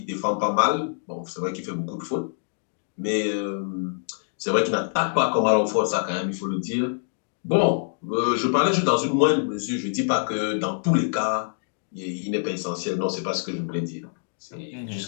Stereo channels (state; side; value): silent; right; digital silence